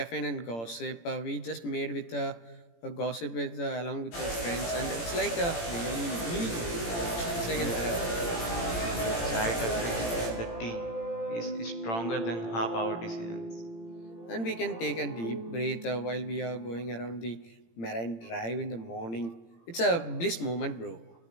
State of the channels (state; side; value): late; right; 17 ms